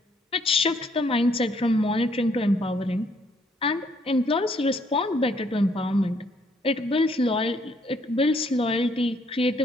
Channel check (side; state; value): both; normal; correlation 0.68